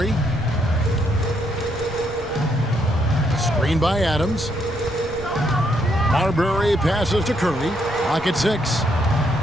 Screen by Adams. Marbury passes to Curry. Clock at 6.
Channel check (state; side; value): noise; right; rumble, 15 dB below the sound